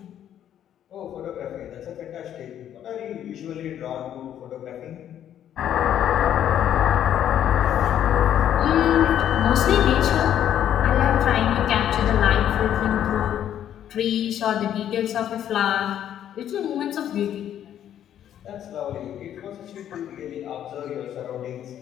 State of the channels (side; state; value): right; quieter; 10.5 dB